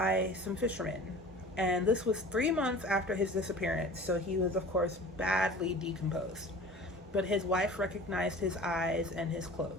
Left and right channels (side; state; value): both; normal; correlation 0.41